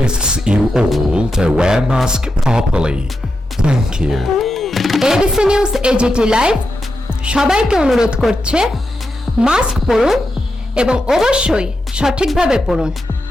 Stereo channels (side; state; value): both; normal; correlation 0.88